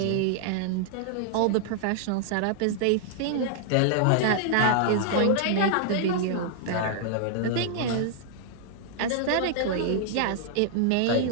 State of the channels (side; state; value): both; different; correlation -0.01